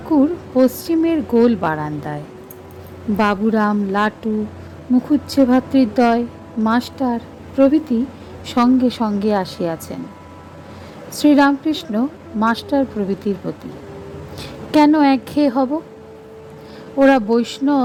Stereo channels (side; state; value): both; identical; correlation 1.00